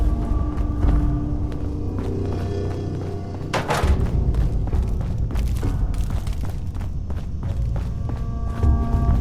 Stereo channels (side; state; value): both; identical; correlation 1.00